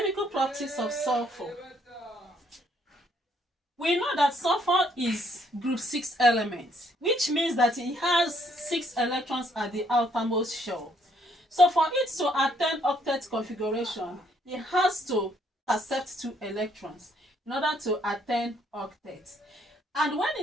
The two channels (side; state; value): both; normal; correlation 0.68